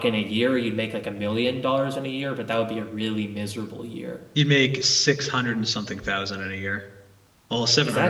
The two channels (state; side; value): identical; both; correlation 1.00